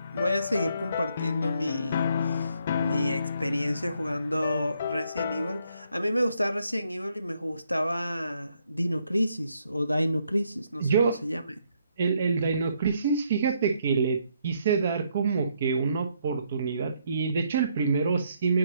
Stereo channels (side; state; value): both; inverted; correlation -0.73